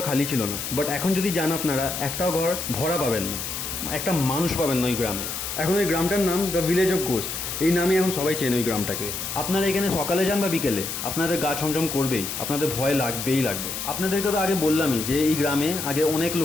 খালি ছিল না, বাট এখন যদি যান আপনারা একটাও ঘর ভরা পাবেন না, একটা মানুষ পাবেন না ওই গ্রামে। এখন ওই গ্রামটার নাম দ্য ভিলেজ অফ গোস্ট, এই নামে এখন সবাই চেনে ওই গ্রামটাকে। আপনারা এখানে সকালে যান বা বিকেলে আপনাদের গা ছমছম করবেই, আপনাদের ভয় লাগবেই লাগবে। আপনাদেরকে তো আগে বললামই যে এই গ্রামে আগে অনেক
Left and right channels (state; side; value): noise; left; hiss, 5 dB below the sound